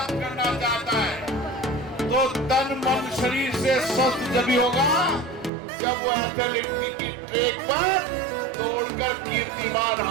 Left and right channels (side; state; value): left; drops out; at 5.5 s